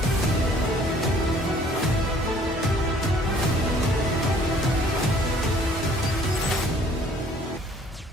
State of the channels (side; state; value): both; normal; correlation 0.57